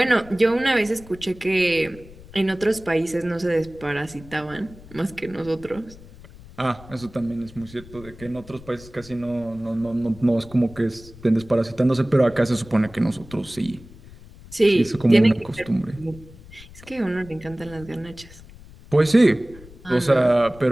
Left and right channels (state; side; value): noise; left; rumble, 20 dB below the sound